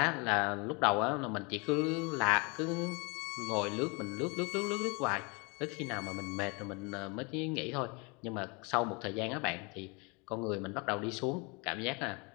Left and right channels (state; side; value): quieter; right; 30.0 dB